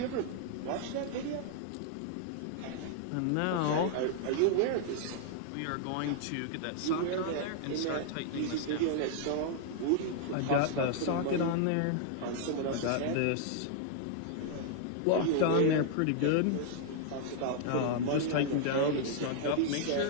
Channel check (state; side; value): different; both; correlation 0.00